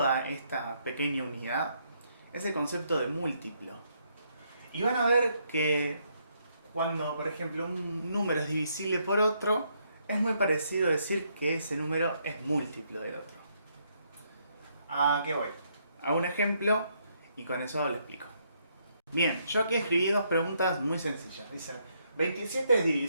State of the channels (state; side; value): inverted; both; correlation -0.74